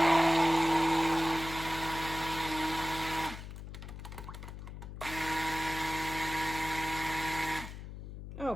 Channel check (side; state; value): left; noise; hum, 10 dB below the sound